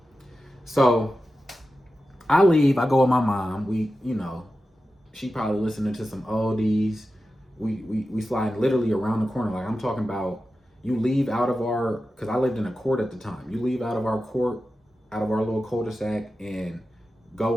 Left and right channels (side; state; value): both; normal; correlation 0.93